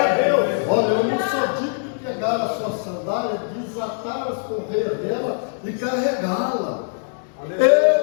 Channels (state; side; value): silent; right; digital silence